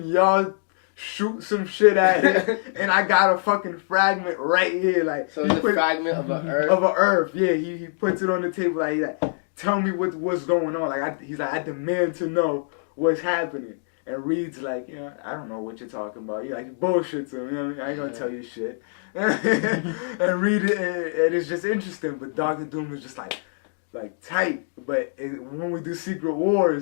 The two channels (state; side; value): silent; right; digital silence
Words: y'all shoot some shit at it, and I got a fucking fragment right here. Like, so it's a fragment of an Earth. Of an Earth, yeah. He puts it on the table like, tell me what's going on. Like, he's like, I demand to know what's happening. And Reed's like, you know, I don't know what you're talking about. He like bullshits him. You know what I mean? I ain't gonna tell you shit. And Reed, and it's just interesting. But Doctor Doom is just like tight. But when we do Secret